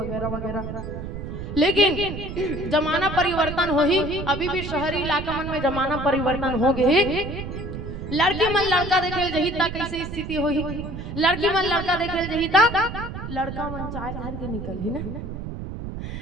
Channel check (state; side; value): noise; right; rumble, 7 dB below the sound